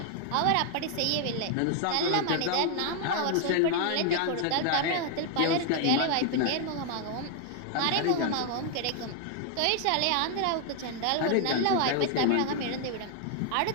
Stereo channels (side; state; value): both; different; correlation 0.00